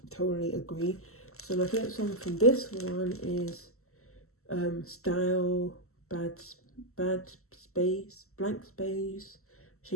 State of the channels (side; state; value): right; late; 0.63 ms